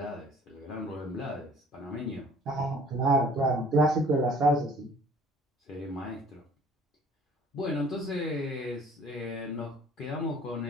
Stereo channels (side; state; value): both; normal; correlation 0.53